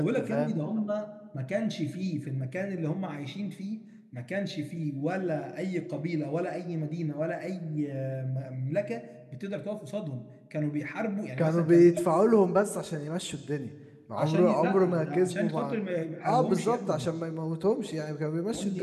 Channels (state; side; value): identical; both; correlation 1.00